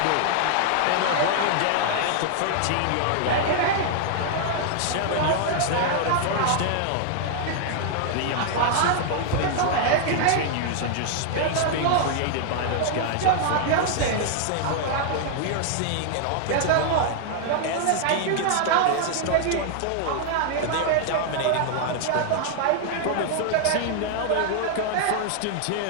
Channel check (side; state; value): both; different; correlation 0.00